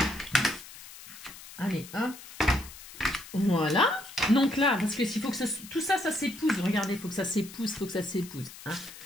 Allez, hop. Voilà. Donc là, parce que s'il faut que tout ça, ça s'épouse. Regardez, il faut que ça s'épouse, Hein.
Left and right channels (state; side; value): noise; left; hiss, 16 dB below the sound